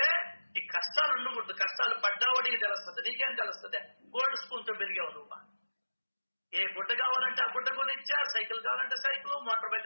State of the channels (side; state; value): both; inverted; correlation -1.00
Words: ఈ కష్టాలు ఉండకూడదు. కష్టాలు పడ్డావడికి తెలుస్తుంది, నీకేం తెలుస్తుంది? గోల్డ్ స్పూన్ తో పెరిగావు నువ్వు. ఏ గుడ్డ కావాలంటే ఆ గుడ్డ కొనిచ్చా, సైకిల్ కావాలంటే సైకిల్, మోటార్ బైక్